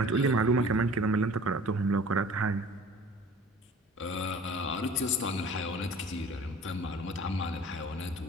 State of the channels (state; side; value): normal; both; correlation 0.46